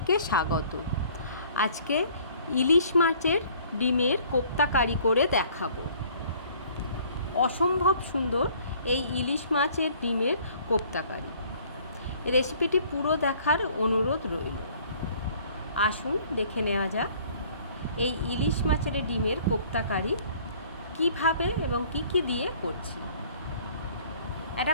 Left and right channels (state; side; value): inverted; both; correlation -0.55